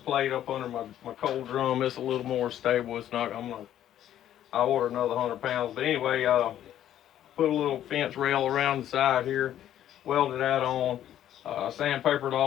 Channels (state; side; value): quieter; right; 11.5 dB